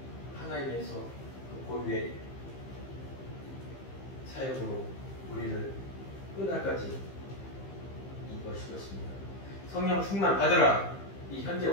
하나님에서 그 고유의 사역으로 우리를 끝날까지 이것일 것입니다. 성령 충만 받으라. 이 현재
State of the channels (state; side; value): late; right; 15 ms